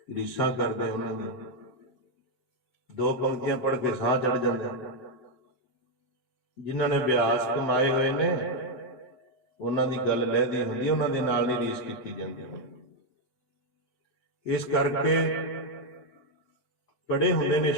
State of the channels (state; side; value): late; right; 8.0 ms